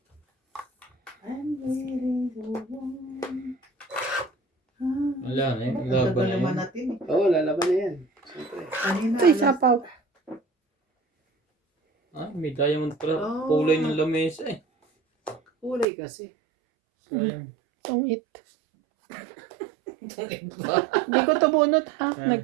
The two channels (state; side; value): drops out; left; at 15.9 s